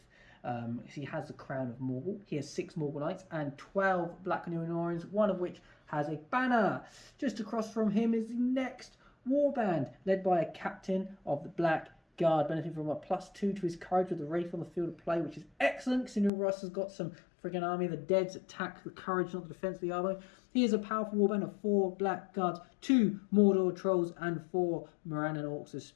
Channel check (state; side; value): drops out; right; at 16.3 s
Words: He has the crown of Morgul. He has 6 Morgul knights and 12 Black Númenóreans, one of which has a banner. Just across from him is the next warband, led by a captain of the Black Guard, benefiting from a +2 to his courage with the Wraith on the field of play, which is excellent, considering Russ has got some friggin' army. The Deads attack the courage, not the defense of the army. He is a powerful warband of 4 Black Guards, 2 Mordor Trolls, and 4 Morannon Orcs with